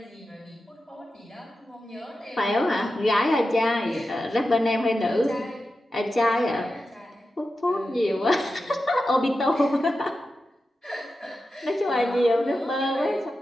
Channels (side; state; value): both; normal; correlation 0.91